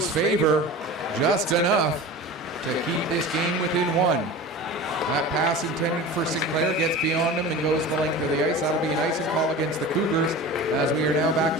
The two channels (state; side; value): normal; both; correlation 0.34